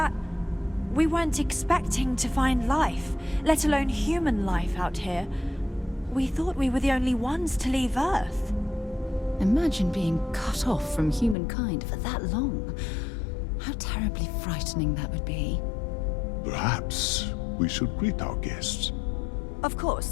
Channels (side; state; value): right; drops out; at 11.4 s